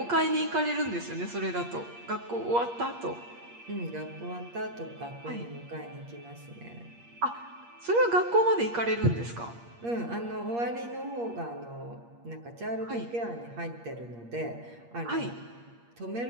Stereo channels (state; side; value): late; left; 8.5 ms